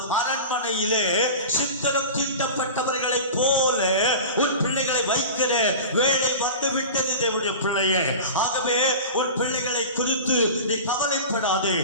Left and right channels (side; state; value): both; inverted; correlation -0.32